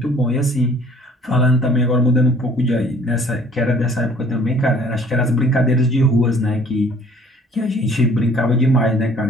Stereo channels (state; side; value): normal; both; correlation 0.55